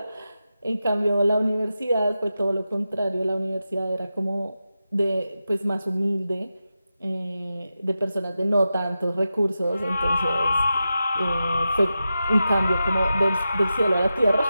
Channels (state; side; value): inverted; both; correlation -0.91